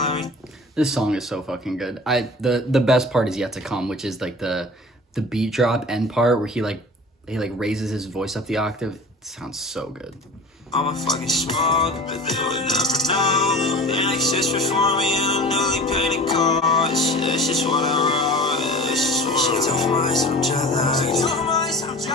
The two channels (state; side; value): normal; both; correlation 0.39